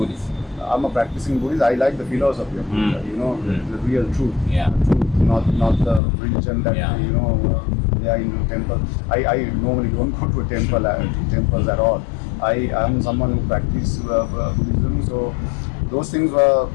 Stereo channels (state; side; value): drops out; right; at 6.0 s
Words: I'm a practicing Buddhist. I like the philosophy of Buddha, the real truth. Not the religion that they are in temple. I normally don't go to temples at all. I am someone who practices Buddhism, so those things were